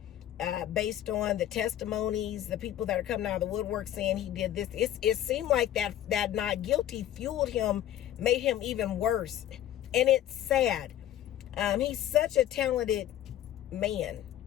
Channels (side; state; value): right; quieter; 12.0 dB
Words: based on the testimonies, the people that are coming out of the woodwork saying he did this. It seemed like that not guilty fueled him, made him even worse. And it's sad. He's such a talented man.